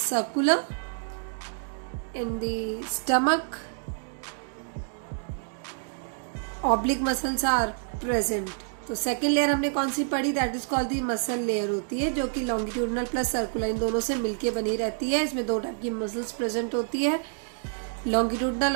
In the stomach, oblique muscles are present. तो सेकेंड लेयर हमने कौन सी पढ़ी? That is called the muscle layer होती है, जो कि लॉन्गिट्यूडनल प्लस सर्कुलर इन दोनों से मिलके बनी रहती है. इसमें 2 टाइप की मसल्स प्रेजेंट होती है, लॉन्गिट्यूडनल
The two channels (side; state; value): left; silent; 59 dB below the other